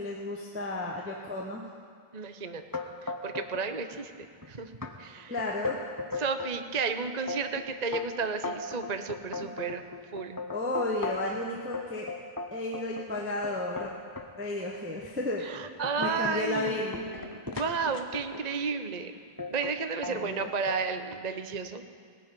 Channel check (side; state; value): left; late; 1.9 ms